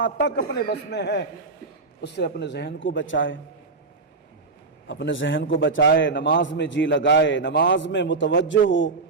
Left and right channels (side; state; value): left; quieter; 4.0 dB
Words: تک اپنے بس میں ہے اس سے اپنے ذہن کو بچائے، اپنے ذہن کو بچائے، نماز میں جی لگائے، نماز میں متوجہ ہو،